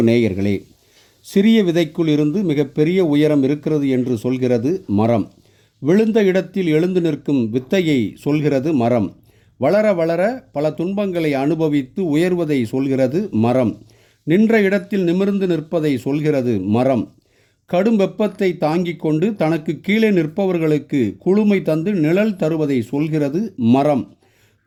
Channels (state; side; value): identical; both; correlation 1.00